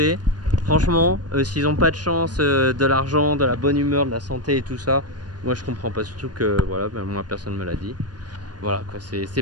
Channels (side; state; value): left; late; 0.69 ms